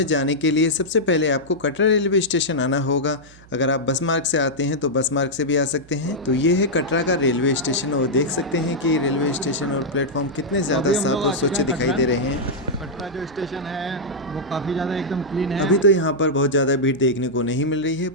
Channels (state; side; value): noise; right; hum, 24 dB below the sound